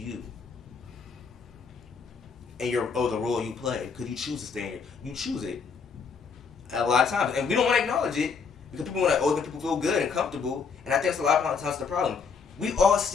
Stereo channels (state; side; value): quieter; right; 5.6 dB